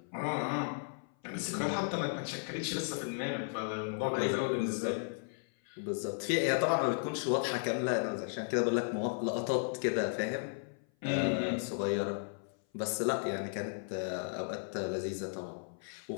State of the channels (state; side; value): silent; right; 54 dB below the other